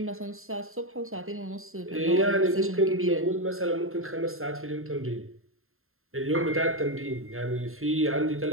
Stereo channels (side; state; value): left; late; 0.61 ms